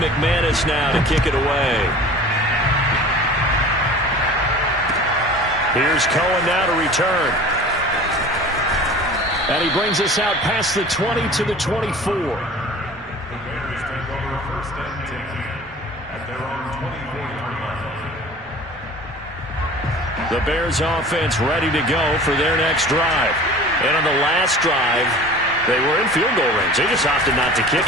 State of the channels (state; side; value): normal; both; correlation 0.42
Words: now to kick it away. Here's Cohen now to return. And he brings us out past the 20 to the 24. The Bears offense ready to go for their next drive. And on the last drive, they were in field goal range. They just opted not to kick